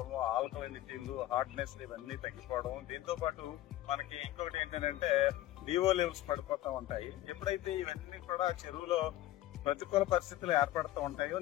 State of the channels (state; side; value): quieter; right; 14.7 dB